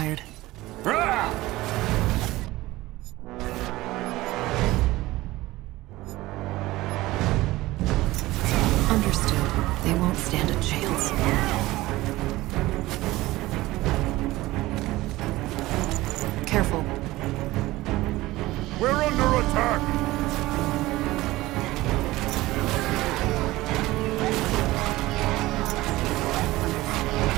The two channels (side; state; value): left; quieter; 18.4 dB